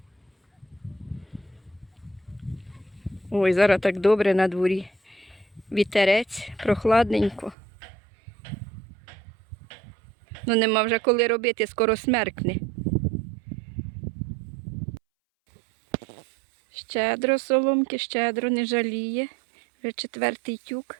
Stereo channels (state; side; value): drops out; left; at 7.6 s